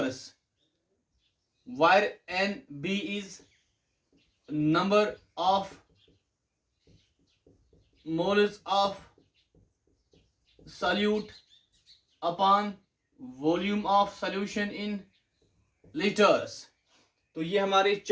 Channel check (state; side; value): identical; both; correlation 1.00